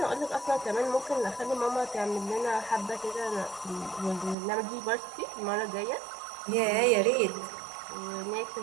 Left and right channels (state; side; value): drops out; left; at 4.4 s